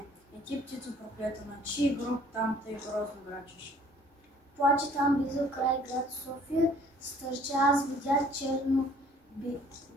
и ти, птицо проклета, на чий гроб там тъй грозно грачеш? Плаче там близо край град София, стърча, аз видях черно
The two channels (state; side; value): normal; both; correlation 0.56